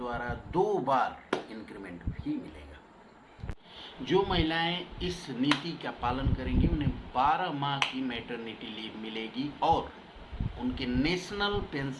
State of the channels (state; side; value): identical; both; correlation 1.00